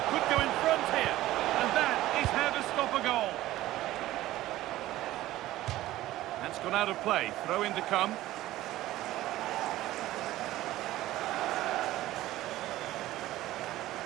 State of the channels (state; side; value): quieter; left; 15.7 dB